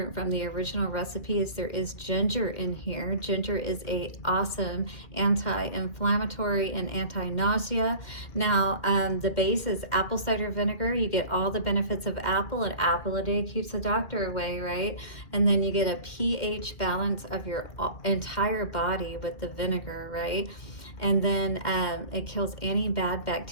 from the original recipe is there is ginger in here. Ginger is a awesome anti-inflammatory and anti-nausea. Now the base is apple cider vinegar. You get all the benefits of apple. An apple a day keeps the doctor away, right? And then you get a pH balance of your entire body with the vinegar, right? And then it kills any bad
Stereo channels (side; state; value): right; late; 2.1 ms